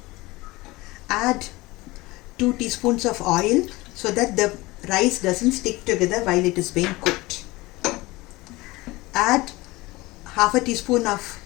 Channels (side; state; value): right; quieter; 21.1 dB